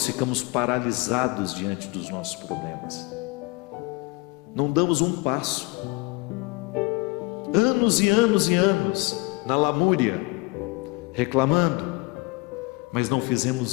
ficamos paralisados diante dos nossos problemas. Não damos um passo. Anos e anos e anos na lamúria, reclamando, mas não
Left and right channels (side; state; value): right; quieter; 25.1 dB